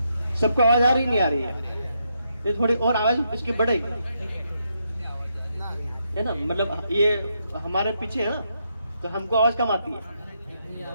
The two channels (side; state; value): both; inverted; correlation -0.79